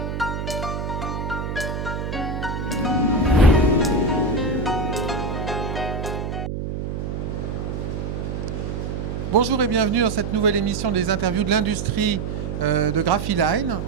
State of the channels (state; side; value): noise; right; hum, 4 dB below the sound